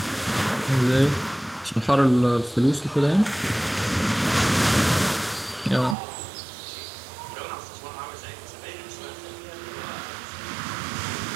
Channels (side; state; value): left; drops out; at 6.0 s